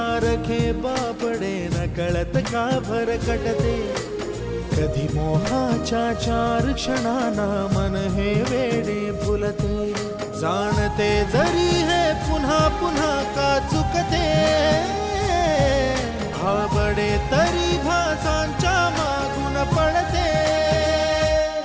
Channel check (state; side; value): identical; both; correlation 1.00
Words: बापडे नकळत का भरकटते कधी मोहाच्या चार क्षणांना मन हे वेडे फुलते जाणते जरी हे पुन्हा पुन्हा का चुकते आवडे तरी भासांच्या मागून पडते